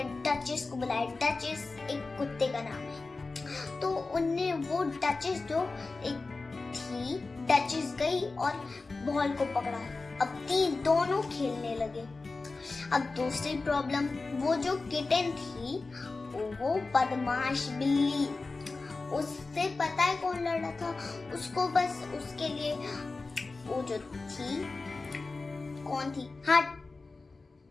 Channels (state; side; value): quieter; right; 3.7 dB